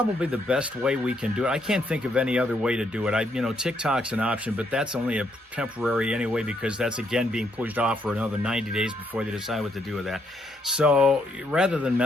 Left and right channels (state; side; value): normal; both; correlation 0.74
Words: the best way we can do it. I can't think of any other way to do it. TikTok's an option, but that's only a temporary anyway, because that's again being pushed off for another 90 days before they decide what to do with that. So rather than